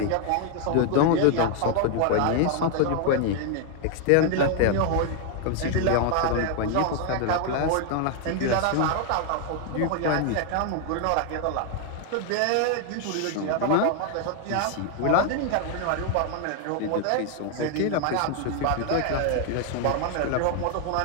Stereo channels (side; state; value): both; different; correlation 0.00